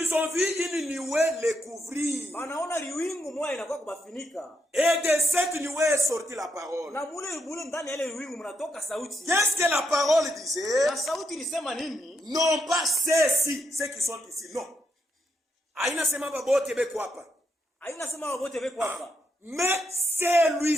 ont vu une nuée les couvrir. wanaona liwingu moja inakuwa kubafinika. Et de cette nuée est sortie la parole. Na mule ndani ya ile liwingu mnatoka sauti. Qu'est-ce que la parole disait? Na sauti ilisema nini? Non pas ceux-ci, ceux qui sont ici, non. Aina sema babote beko hapa. Haina sema wote beko hapa. Mais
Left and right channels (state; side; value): normal; both; correlation 0.80